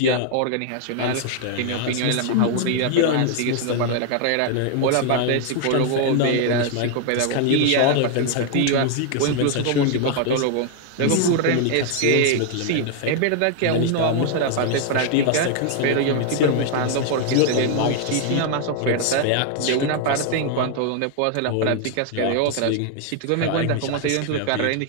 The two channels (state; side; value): different; both; correlation 0.00